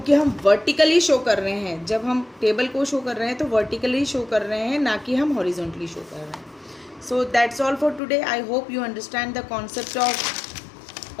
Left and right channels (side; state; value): right; drops out; at 8.0 s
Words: हम वर्टिकली शो कर रहे हैं, जब हम टेबल को शो कर रहे हैं तो वर्टिकली शो कर रहे हैं, ना कि हम हॉरिजॉन्टली शो कर रहे हैं। So that's all for today. I hope you understand the concept of